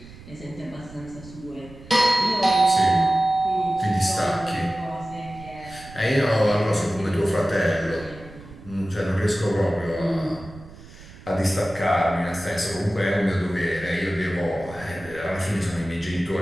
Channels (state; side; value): noise; right; rumble, 18 dB below the sound